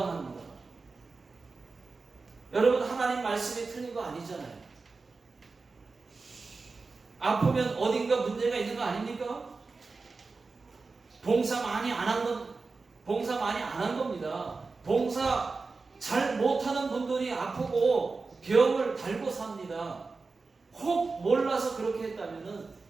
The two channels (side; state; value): left; quieter; 4.1 dB